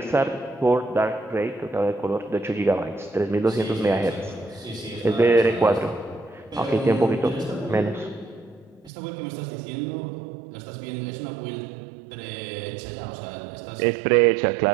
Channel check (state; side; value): drops out; left; at 8.9 s